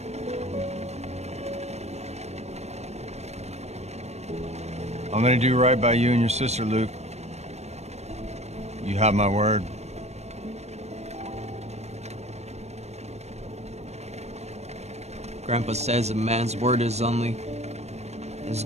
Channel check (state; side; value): late; left; 0.32 ms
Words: I'm gonna do right by you and your sister, Luke. You have my word. Grandpa says a man's word is only as